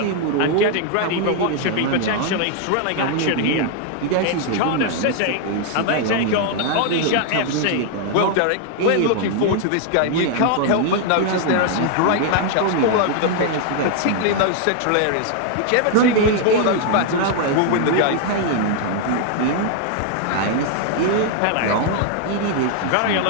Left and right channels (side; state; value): both; different; correlation 0.00